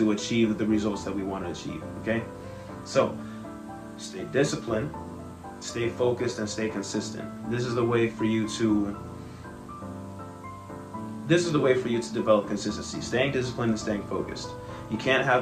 achieve the results that we want to achieve, okay? So stay disciplined, stay focused, and stay consistent. This is the way for you to develop consistency. Staying disciplined and staying focused. You can't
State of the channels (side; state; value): both; identical; correlation 1.00